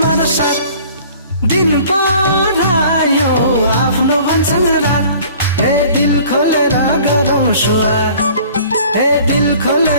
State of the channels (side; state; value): both; inverted; correlation -0.50